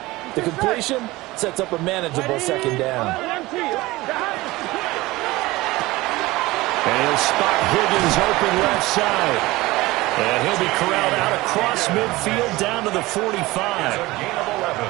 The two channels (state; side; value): quieter; left; 19.9 dB